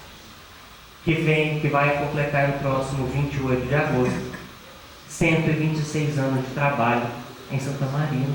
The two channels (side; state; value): both; identical; correlation 1.00